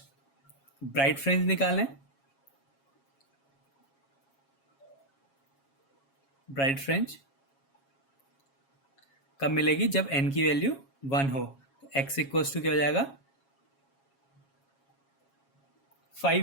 ब्राइट फ्रिंज निकालें, ब्राइट फ्रिंज कब मिलेगी? जब n की वैल्यू 1 हो। तो x इक्वल्स टू क्या हो जाएगा?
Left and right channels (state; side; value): late; right; 7.3 ms